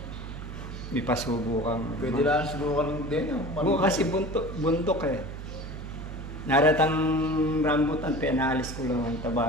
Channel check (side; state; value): right; noise; hum, 9 dB below the sound